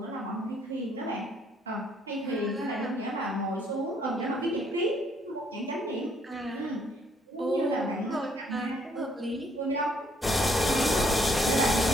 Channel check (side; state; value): both; normal; correlation 0.67